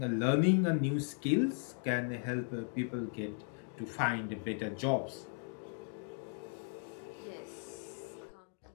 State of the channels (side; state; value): right; silent; 53 dB below the other